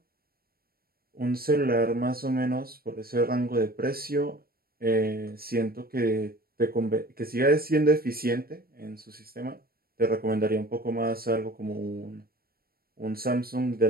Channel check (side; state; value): left; late; 0.44 ms